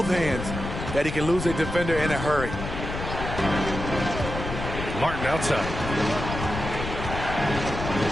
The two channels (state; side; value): noise; left; rumble, 6 dB below the sound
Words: hands that he can lose a defender in a hurry. Martin outside.